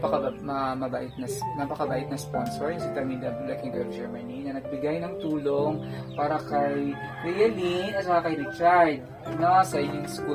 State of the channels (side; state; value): both; identical; correlation 1.00